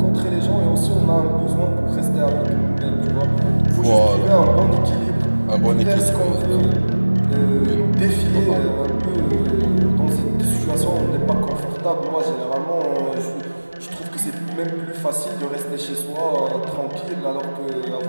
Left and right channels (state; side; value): inverted; both; correlation -1.00